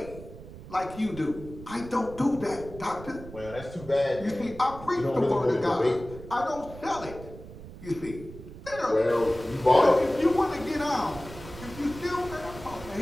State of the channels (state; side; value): noise; right; rumble, 15 dB below the sound